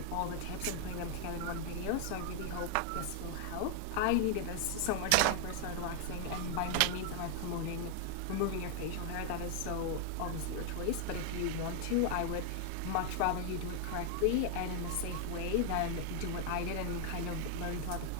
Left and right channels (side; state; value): both; different; correlation 0.00